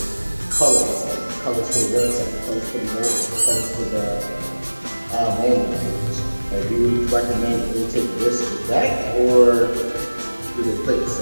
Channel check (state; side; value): inverted; both; correlation -1.00